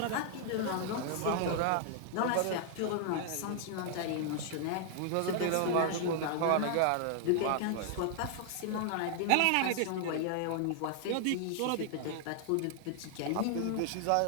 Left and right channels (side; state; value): both; different; correlation 0.00